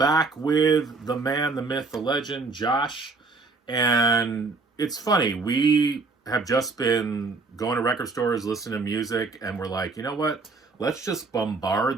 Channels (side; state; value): left; quieter; 3.9 dB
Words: with the man, the myth, the legend, Josh. And it's funny, we have just been going to record stores, listening to music, and we're like, you know what? Let's just